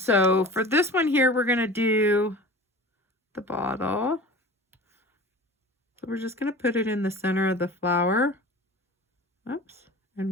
for this one here, we're going to do the bottle. So we're just going to put it in the center of the flower. Oops.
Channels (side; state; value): both; normal; correlation 0.38